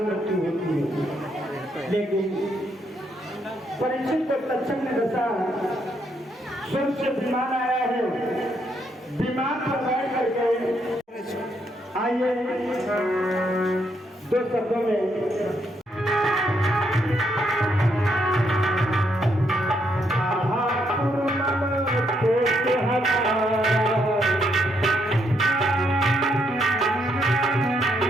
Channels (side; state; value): both; normal; correlation 0.75